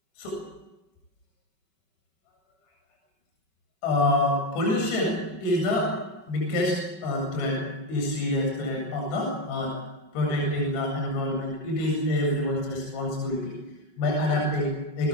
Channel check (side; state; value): right; late; 5.3 ms